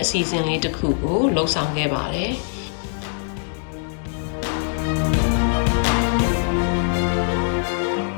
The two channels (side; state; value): right; silent; digital silence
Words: အစီအစဉ်လေးတစ်ခုကိုလှုပ်ဆောင်ခဲ့ပါတယ်